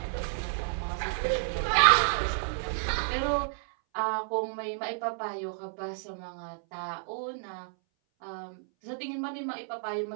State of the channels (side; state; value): left; silent; 57 dB below the other